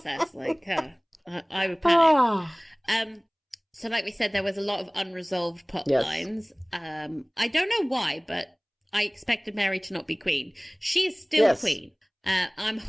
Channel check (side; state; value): both; identical; correlation 1.00